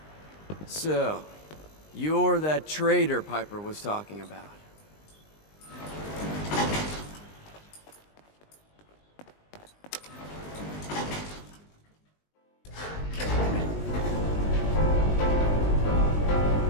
So, you're that traitor Piper was talking about.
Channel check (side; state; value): right; late; 20 ms